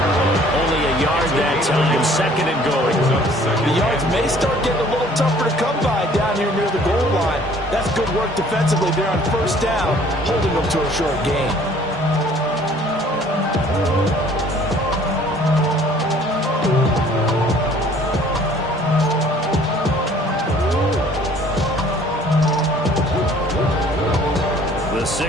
Only a yard that time, 2nd and goal. The yards may start getting a little tougher to come by down here near the goal line. That's good work defensively there on 1st down, holding them to a short gain. The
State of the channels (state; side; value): normal; both; correlation 0.55